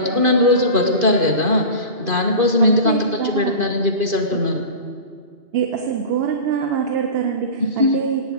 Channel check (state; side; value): late; left; 2.5 ms